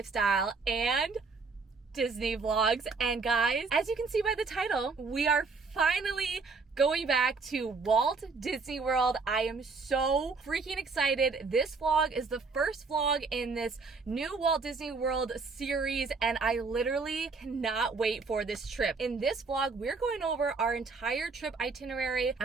and Disney vlogs. And guys, as you can see by the title, we are finally going back to Walt Disney World. I am so freaking excited. This vlog is the first vlog in this new Walt Disney World series, and I literally cannot wait for this trip. In this vlog, we're going over our entire trip itinerary.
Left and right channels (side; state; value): left; quieter; 4.4 dB